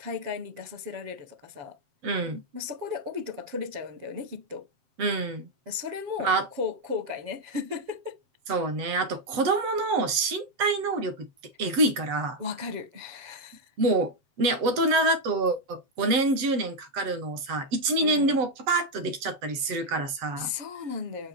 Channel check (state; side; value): late; left; 7.5 ms